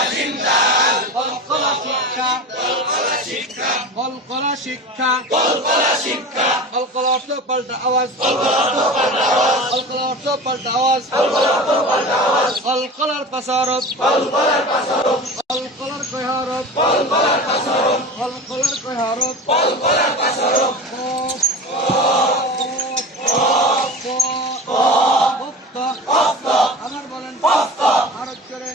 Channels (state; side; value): normal; both; correlation 0.32